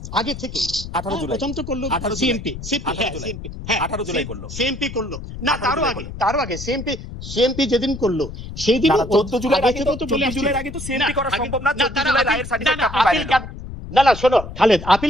আগে থেকে 18 জুলাই প্রথম তো করলো সিএমপি, 18 জুলাই করলো, সিএমপি করলো না, তারও আগে সিএমপি যেদিন করলো সেই দিন 14 জুলাই আগে তো সিএমপি করা সম্ভব না। 14 জুলাই রায়ের সার্টিফিকেট আপনি পাইলেন না, শোনো খালেদ,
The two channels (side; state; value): left; noise; rumble, 11 dB below the sound